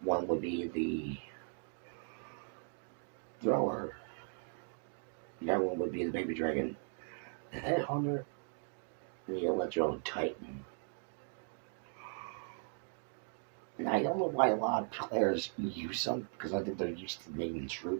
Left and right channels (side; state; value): left; silent; 52 dB below the other